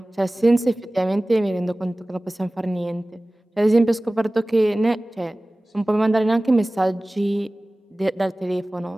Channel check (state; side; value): normal; both; correlation 0.98